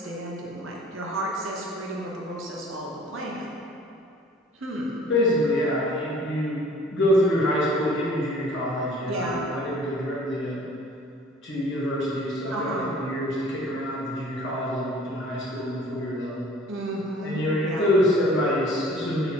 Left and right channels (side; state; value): both; normal; correlation 0.51